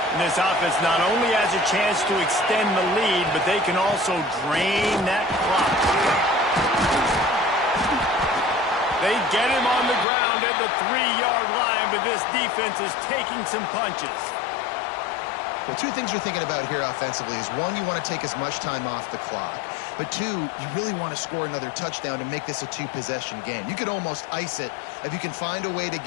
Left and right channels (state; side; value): drops out; right; at 10.1 s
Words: And this offense not only has a chance to extend the lead, but they can also drain that clock. They get him on the ground at the 3-yard line, but this defense is taking some punches. Well, two things you're thinking about here offensively is, one, you want to take as much time off the clock. But two, you really want to score another touchdown to make this a 2-possession game. You could almost ice it if you can find a way to